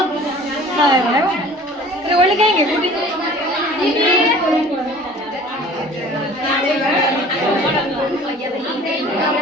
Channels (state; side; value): normal; both; correlation 0.46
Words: अरे बोले कहेंगे बूढ़ी